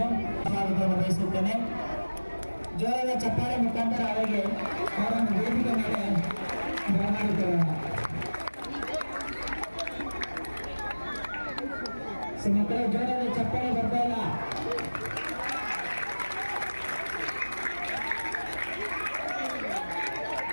ಜೋರಾದ ಚಪ್ಪಾಳೆ ಮುಖಾಂತರ ಅವರನ್ನು ವೇದಿಕೆ ಮೇಲೆ ಬರಮಾಡಿಕೊಳ್ಳೋಣ. ಮಕ್ಕಳು ಜೋರಾದ ಚಪ್ಪಾಳೆ ಬರ್ತಾ ಇಲ್ಲ.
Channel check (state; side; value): inverted; both; correlation -1.00